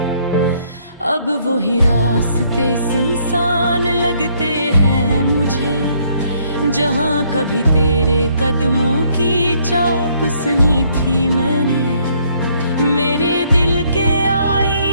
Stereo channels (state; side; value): inverted; both; correlation -0.67